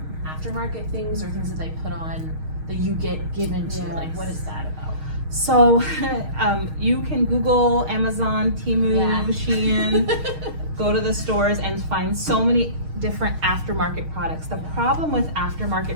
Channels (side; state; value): left; late; 6.4 ms